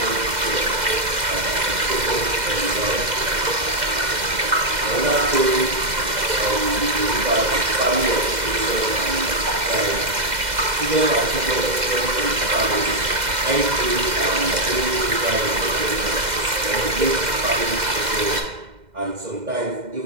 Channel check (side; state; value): left; late; 2.0 ms